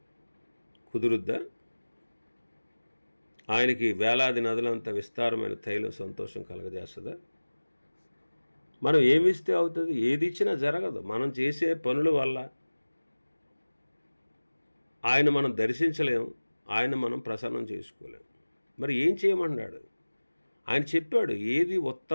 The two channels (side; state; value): both; inverted; correlation -1.00